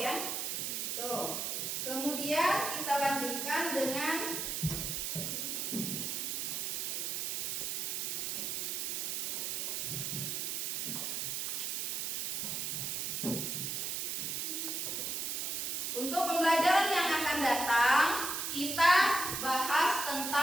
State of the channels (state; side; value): noise; right; hiss, 1 dB below the sound